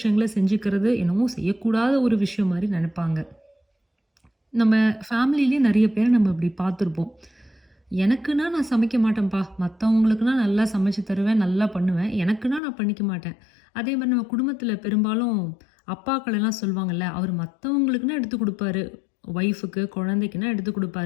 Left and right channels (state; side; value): drops out; right; at 12.6 s